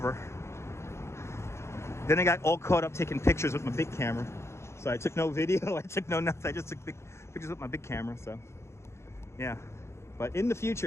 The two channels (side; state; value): right; late; 0.13 ms